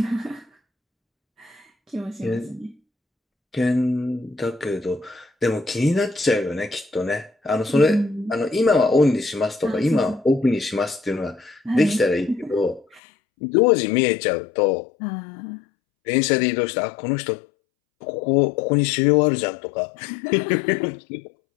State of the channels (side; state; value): right; drops out; at 13.0 s